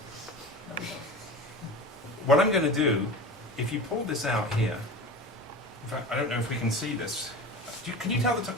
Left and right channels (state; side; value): normal; both; correlation 0.31